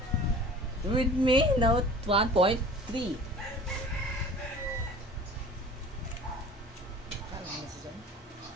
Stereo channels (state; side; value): normal; both; correlation 0.43